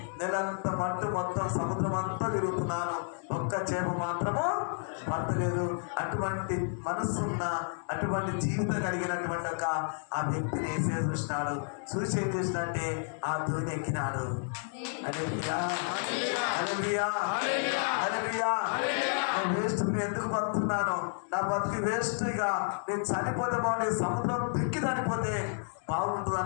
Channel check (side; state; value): right; silent; 57 dB below the other